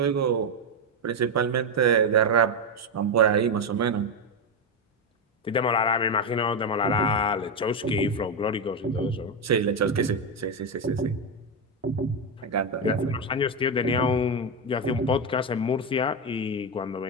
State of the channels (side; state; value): both; normal; correlation 0.08